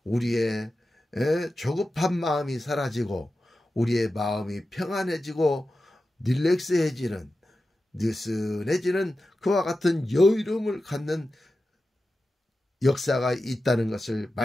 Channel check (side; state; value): both; normal; correlation 0.92